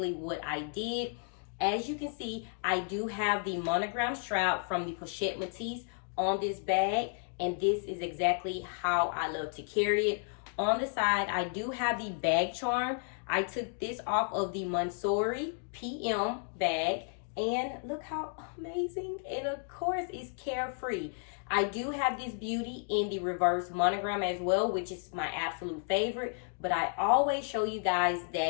what I did. As you can see, I do have the monogram strap from the Pochette Matisse on this bag, and this is exactly how I love to carry it. On the side, I do have the bag charm. I took this off of the Montsouris PM bag, and look how amazing. And of course, it's carefree. I do have this beauty in the reverse monogram as well, which is my absolute favorite, but I always show you guys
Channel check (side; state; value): right; silent; 56 dB below the other